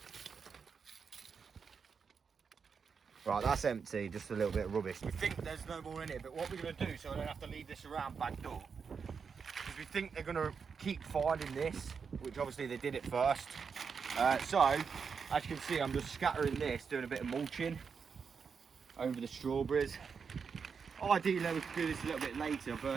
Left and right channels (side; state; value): left; quieter; 5.9 dB